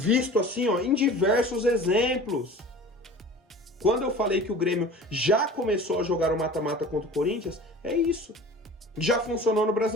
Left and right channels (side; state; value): both; normal; correlation 0.40